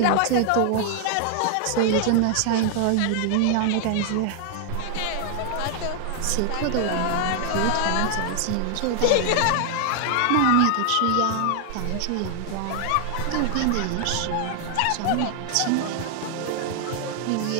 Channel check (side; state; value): both; different; correlation 0.00